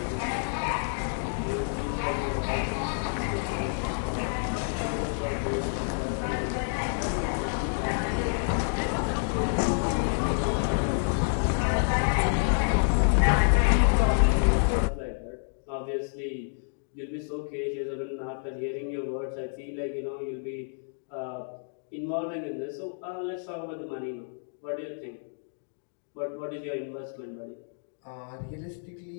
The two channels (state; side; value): silent; right; digital silence